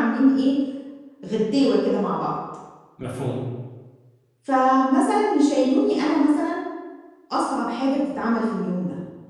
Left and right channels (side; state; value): both; identical; correlation 1.00